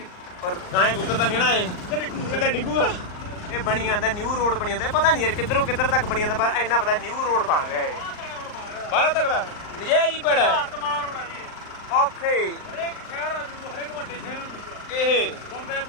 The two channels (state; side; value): late; right; 39 ms